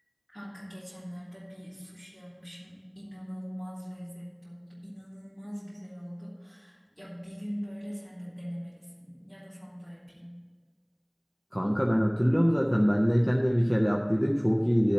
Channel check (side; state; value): both; identical; correlation 1.00